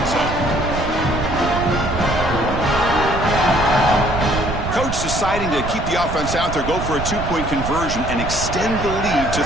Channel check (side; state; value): right; noise; rumble, 6 dB below the sound